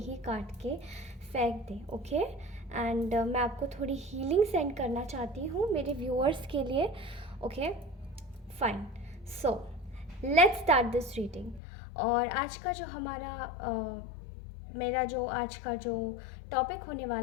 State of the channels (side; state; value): right; drops out; at 11.6 s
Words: काट के फेंक दें। ओके एंड मैं आपको थोड़ी हीलिंग सेंड करना चाहती हूँ मेरे व्यूअर्स के लिए। Okay fine, so let's start this reading. और आज का जो हमारा मेरा जो आज का जो टॉपिक होने